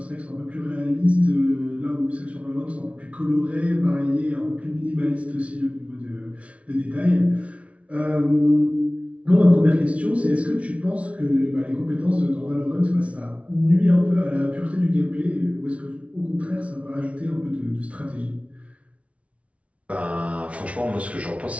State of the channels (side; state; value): left; late; 0.064 ms